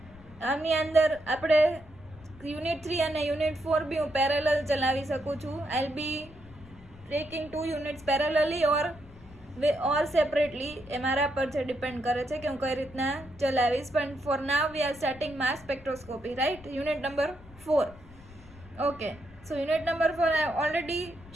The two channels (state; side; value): noise; left; rumble, 21 dB below the sound